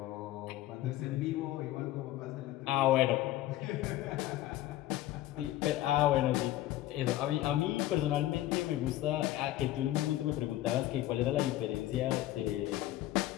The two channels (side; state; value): right; quieter; 14.8 dB